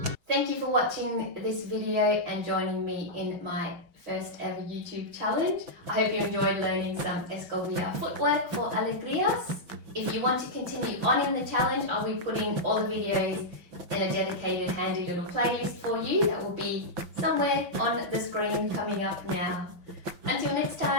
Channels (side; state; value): left; late; 5.9 ms